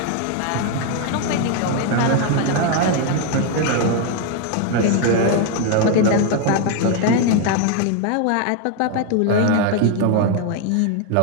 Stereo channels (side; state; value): both; different; correlation 0.01